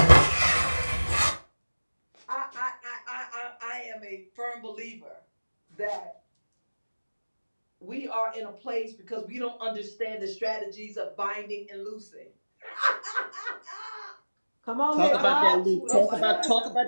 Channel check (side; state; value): both; inverted; correlation -1.00